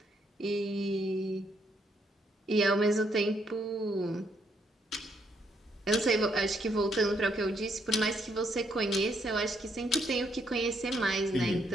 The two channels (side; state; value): both; normal; correlation 0.73